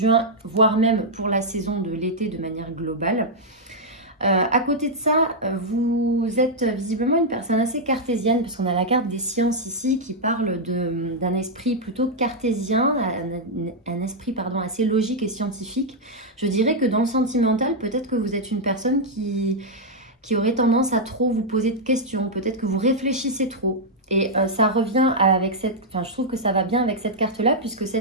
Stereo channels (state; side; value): normal; both; correlation -0.04